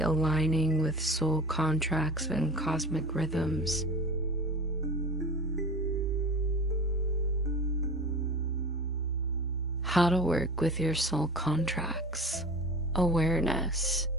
with soul contracts and cosmic rhythms. How to work with your soul contracts. Awareness.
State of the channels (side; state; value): both; normal; correlation 0.35